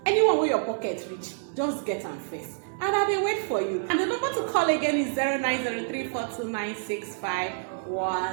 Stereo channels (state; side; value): silent; left; digital silence